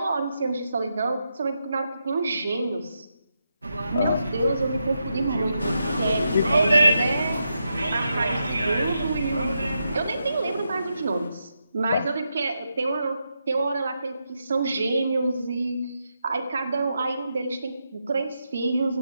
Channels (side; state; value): both; inverted; correlation -0.84